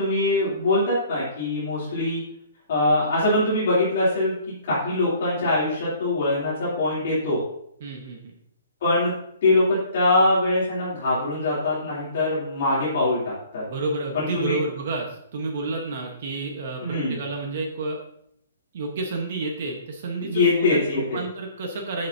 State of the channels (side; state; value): both; inverted; correlation -0.54